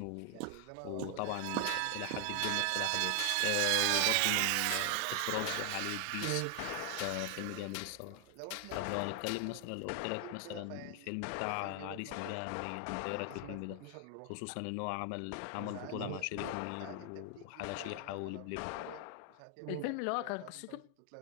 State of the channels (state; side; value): different; both; correlation 0.00